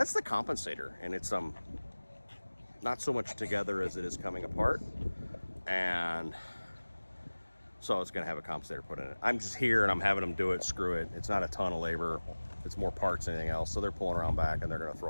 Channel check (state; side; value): inverted; both; correlation -1.00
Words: the compensator, and it's not so much together as it is coming apart. And so it's gonna have a compensator put in it. I'm just here and I'm having them do it, screw it. It's not a ton of labor. It's more parts than anything else. So they're pulling around back and they're gonna